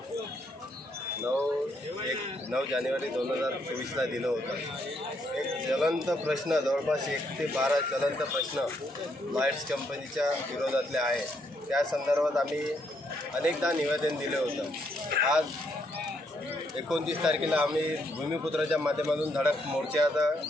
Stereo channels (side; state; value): both; normal; correlation 0.74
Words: 9 जानेवारी 2024ला दिलं होतं। एक ज्वलंत प्रश्न, जवळपास 1 ते 12 ज्वलंत प्रश्न लाईट्स कंपनीच्या विरोधातले आहे। त्या संदर्भात आम्ही अनेकदा निवेदन दिले होतं। आज 29 तारखेला आम्ही भूमिपुत्राच्या माध्यमातून धडक